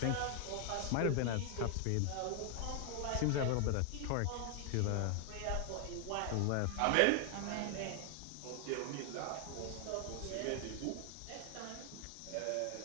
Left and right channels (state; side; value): different; both; correlation 0.00